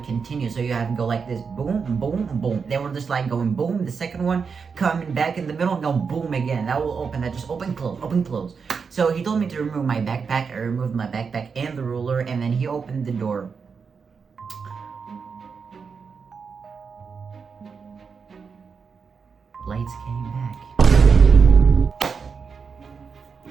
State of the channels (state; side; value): quieter; left; 5.6 dB